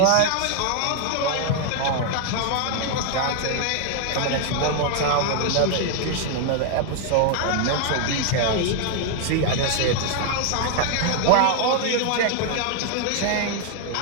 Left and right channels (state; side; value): different; both; correlation 0.00